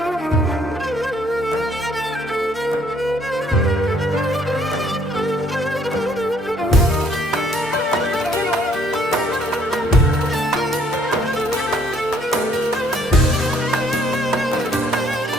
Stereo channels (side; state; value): both; normal; correlation 0.64